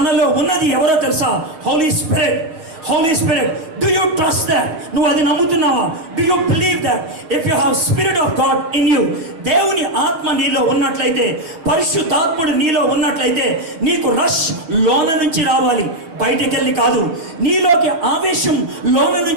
ఉన్నది ఎవరో తెలుసా? Holy Spirit. Do you trust that? నువ్వు అది నమ్ముతున్నావా? Do you believe that? If you have Spirit of God in you, దేవుని ఆత్మ నీలో ఉన్నట్లయితే, పరిశుద్ధాత్ముడు నీలో ఉన్నట్లయితే, నీకు రష్ లోన నుంచి రావాలి, బయటకెళ్ళి కాదు. నీలోకి ఆవేశం లోన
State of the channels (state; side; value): late; left; 6.3 ms